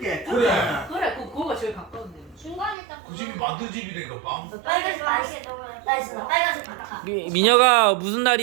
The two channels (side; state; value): left; drops out; at 2.8 s